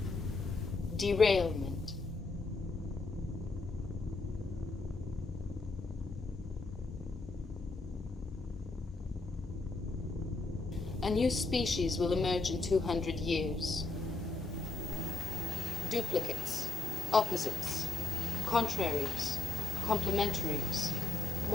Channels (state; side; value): quieter; right; 3.5 dB